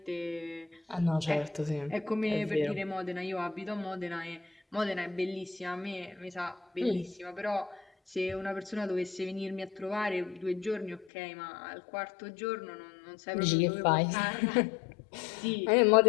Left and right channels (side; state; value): right; drops out; at 11.1 s